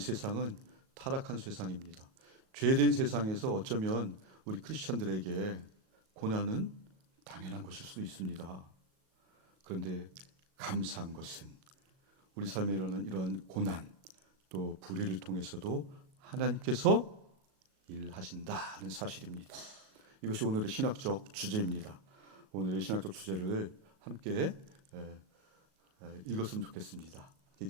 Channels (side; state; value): left; late; 37 ms